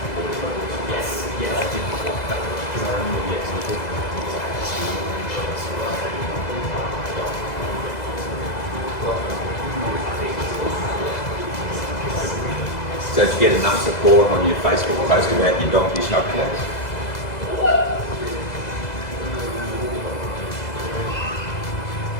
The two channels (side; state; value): right; late; 2.0 ms